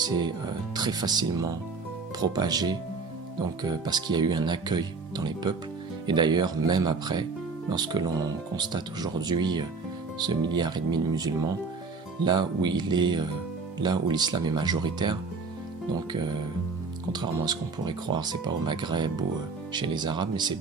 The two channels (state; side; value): quieter; left; 4.3 dB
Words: très facilement propagé, donc parce qu'il y a eu un accueil dans les peuples. Et d'ailleurs, même après, lorsque l'on constate aujourd'hui ce 1,5 milliard de musulmans, là où l'islam est majoritaire, donc contrairement à ce qu'on pourrait croire, c'est pas au Maghreb ou chez les Arabes, mais c'est